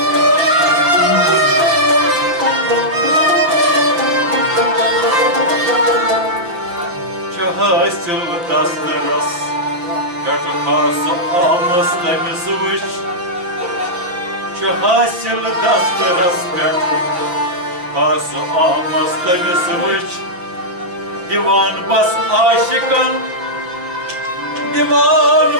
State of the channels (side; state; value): left; late; 5.7 ms